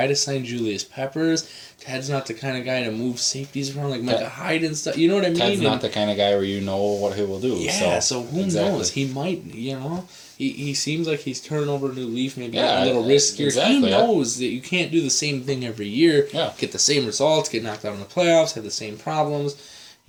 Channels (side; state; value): both; identical; correlation 1.00